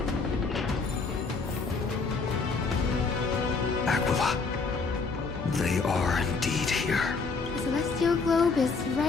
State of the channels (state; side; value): quieter; right; 4.4 dB